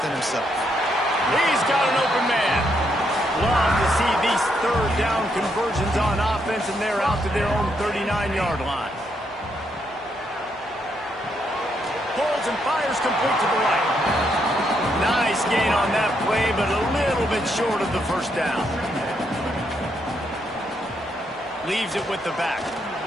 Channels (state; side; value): normal; both; correlation 0.77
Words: himself. He's got an open man. Love to see these 3rd down conversions on offense, and they're out to their own 39-yard line. Pulls and fires complete to the right. Nice gain on that play, but a little bit short of the 1st down. Leaves it with the back.